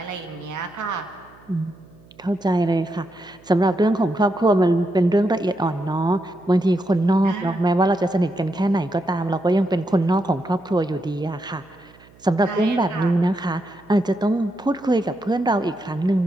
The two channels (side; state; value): right; noise; hum, 27 dB below the sound